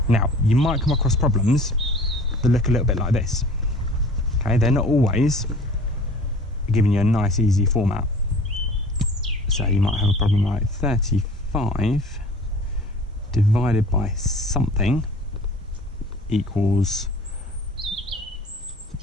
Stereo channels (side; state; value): both; normal; correlation 0.45